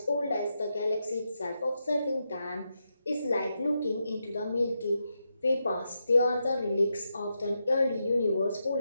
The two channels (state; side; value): inverted; both; correlation -0.85